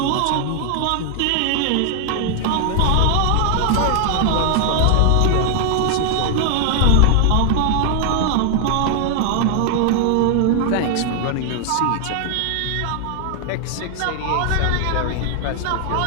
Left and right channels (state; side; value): different; both; correlation 0.00